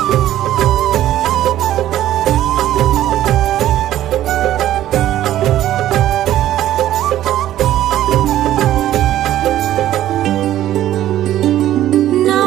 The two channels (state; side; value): quieter; left; 12.9 dB